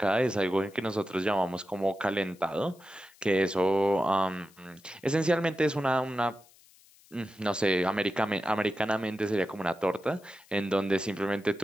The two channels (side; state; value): left; noise; hiss, 27 dB below the sound